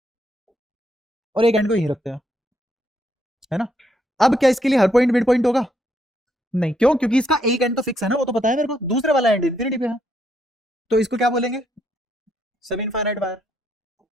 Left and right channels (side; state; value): both; normal; correlation 0.75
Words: और एक एंड को यही रखते हैं, है ना। अब क्या इसके लिए हर पॉइंट मिड पॉइंट होगा? नहीं। क्यों? क्योंकि इसका एक एंड तो फिक्स है ना, वो तो पता है मेरे को। दूसरे वाला एंड इन्फिनिटी पे है, तो इसको क्या बोलेंगे? सब इनफाइनाइट वायर।